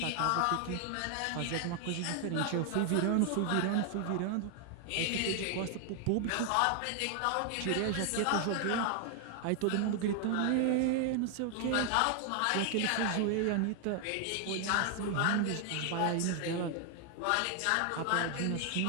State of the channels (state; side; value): different; both; correlation 0.00